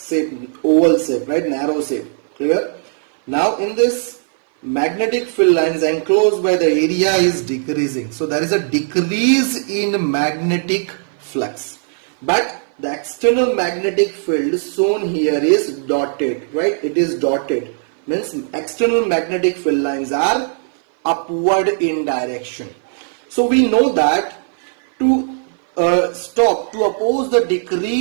shape, oval shape, right, narrow shape. Clear? Now in this magnetic field lines enclosed by the area is decreasing. So there is a decrease in magnetic flux. But the external magnetic field shown here is dotted, right? It is dotted. Means external magnetic field lines are upward in direction. So we know that to oppose the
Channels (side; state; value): left; silent; 59 dB below the other